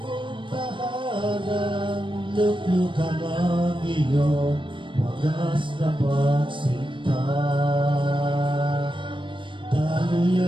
mong tahanan. Luglukan ang iyong wagas na pagsinta.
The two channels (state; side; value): late; left; 0.24 ms